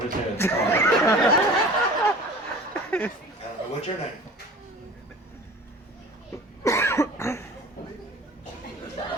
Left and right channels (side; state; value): both; normal; correlation 0.42